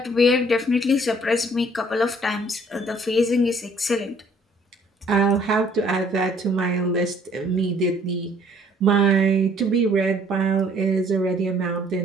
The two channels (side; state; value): both; normal; correlation 0.60